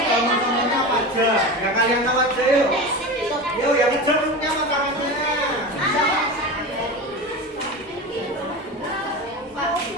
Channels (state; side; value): normal; both; correlation 0.26